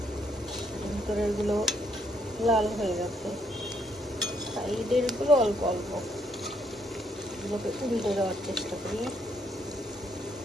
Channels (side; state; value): both; normal; correlation 0.72